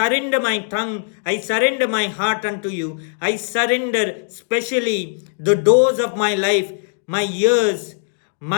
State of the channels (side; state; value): right; silent; digital silence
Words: my tongue. I surrender my heart unto you. I surrender specially the doors of my life, my ears,